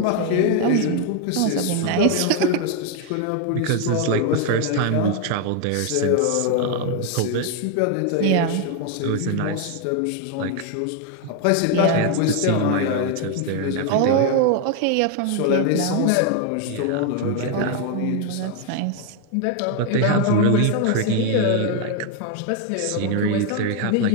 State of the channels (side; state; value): both; different; correlation 0.01